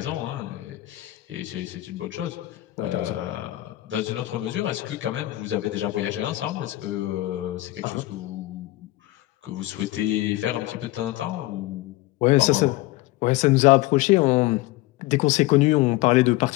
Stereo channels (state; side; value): quieter; right; 18.0 dB